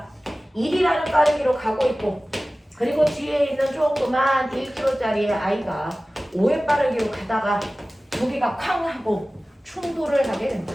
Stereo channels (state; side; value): normal; both; correlation 0.97